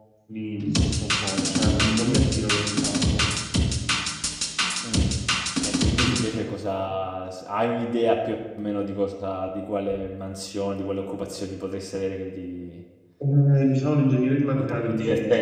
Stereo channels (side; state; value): both; identical; correlation 1.00